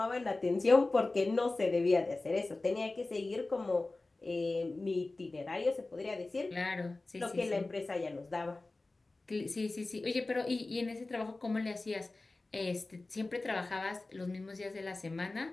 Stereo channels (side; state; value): right; quieter; 3.2 dB